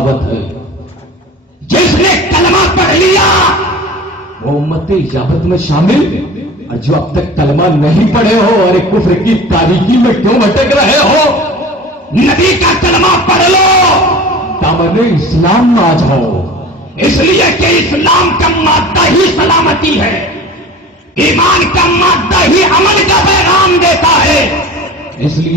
ہے. جس نے کلمہ پڑھ لیا وہ امت اجابت میں شامل، اور جو اب تک کلمہ نہیں پڑھے ہو، ارے کفر کی تاریکی میں کیوں بھٹک رہے ہو؟ نبی کا کلمہ پڑھ لو، دامن اسلام میں آ جاؤ. اس لیے کہ اسلام کا مادہ ہی سلامتی ہے، ایمان کا مادہ ہی عمل کا پیغام دیتا ہے. اس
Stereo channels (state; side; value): normal; both; correlation 0.38